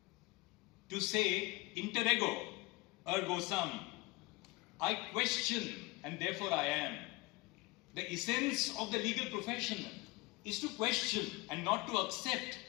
to say, interego ergo sum, I question and therefore I am. The essence of the legal profession is to question and not to accept.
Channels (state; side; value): quieter; right; 23.0 dB